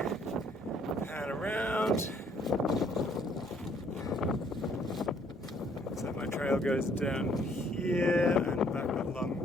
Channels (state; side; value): normal; both; correlation 0.63